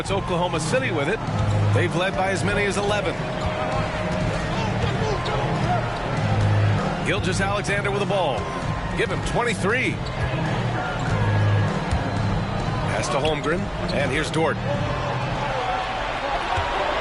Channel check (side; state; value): both; identical; correlation 1.00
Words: Oklahoma City with it. They've led by as many as 11. Gilgeous-Alexander with the ball. Give him 23. Pass to Holmgren. And here's Dort.